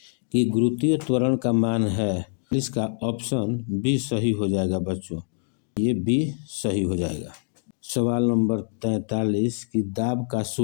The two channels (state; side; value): silent; right; digital silence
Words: कि गुरुत्वीय त्वरण का मान है। इसका ऑप्शन बी सही हो जाएगा बच्चों, ये बी सही हो जाएगा। सवाल नंबर 43 कि दाब का